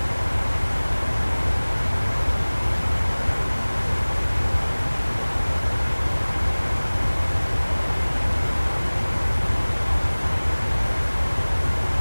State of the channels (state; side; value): inverted; both; correlation -1.00